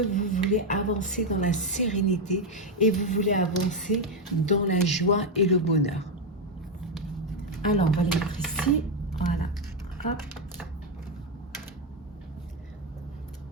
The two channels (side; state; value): both; normal; correlation 0.06